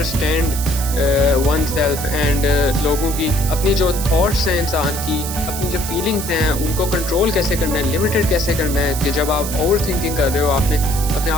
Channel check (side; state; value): right; noise; hiss, 7 dB below the sound